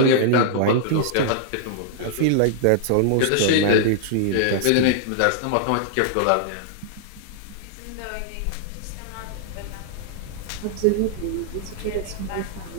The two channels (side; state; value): both; different; correlation -0.01